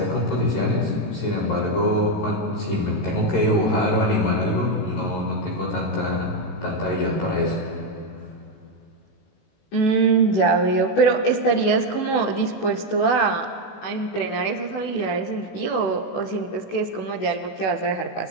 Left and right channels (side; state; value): right; late; 18 ms